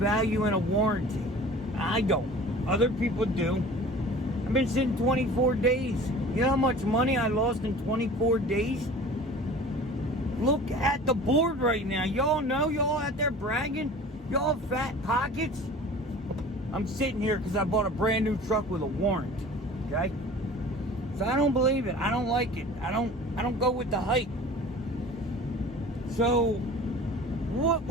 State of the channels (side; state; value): both; normal; correlation 0.42